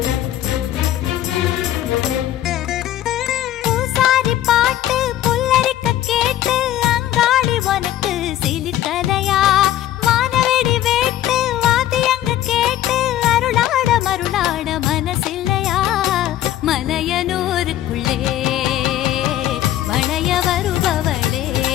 பூசாரி பாட்டு புல்லரிக்க கேட்டு அங்காளி உனக்கு சிலிர்க்கலையா வானவெடி வேட்டு வாத்தியங்க கேட்டு அருளாட மருளாட மனசில்லையா மலையனூருக்குள்ளே வளைய வருபவளே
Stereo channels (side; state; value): right; quieter; 13.0 dB